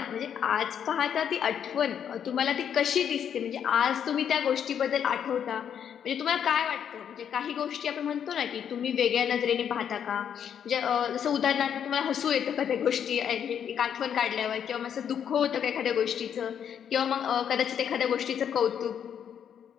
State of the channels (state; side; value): quieter; right; 8.6 dB